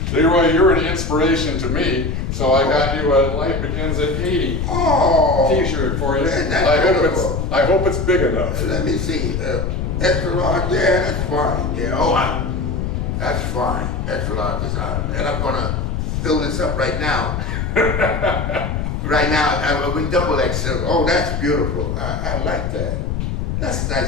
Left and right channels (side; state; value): left; noise; rumble, 2 dB below the sound